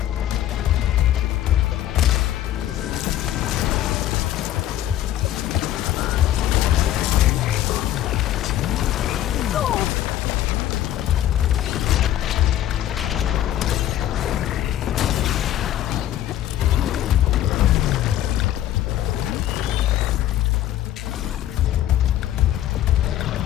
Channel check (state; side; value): quieter; right; 12.5 dB